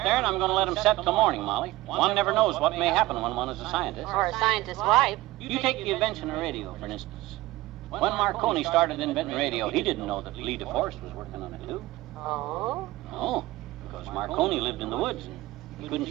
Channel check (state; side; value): quieter; left; 18.5 dB